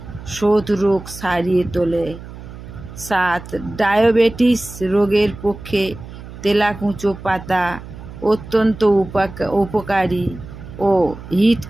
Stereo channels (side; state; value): right; noise; hum, 14 dB below the sound